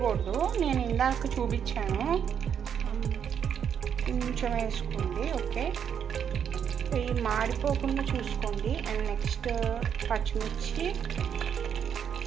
నేను ఇందాక చూపించాను. కొంచెం వేసుకోండి, ఓకే. ఇవి మాడిపోకుండా చూసుకోండి. అండ్ నెక్స్ట్ పచ్చిమిర్చి,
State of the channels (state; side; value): quieter; left; 8.1 dB